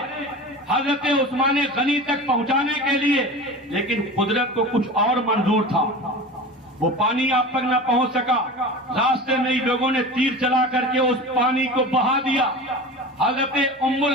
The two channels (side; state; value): both; normal; correlation 0.32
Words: حضرت عثمان غنی تک پہنچانے کے لیے، لیکن قدرت کو کچھ اور منظور تھا، وہ پانی آپ تک نہ پہنچ سکا۔ راستے میں ہی لوگوں نے تیر چلا کر کے اس پانی کو بہا دیا۔ حضرت ام